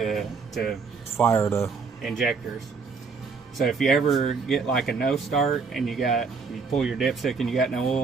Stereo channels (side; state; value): left; quieter; 5.0 dB